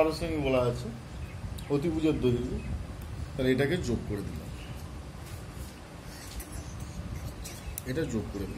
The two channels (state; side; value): identical; both; correlation 1.00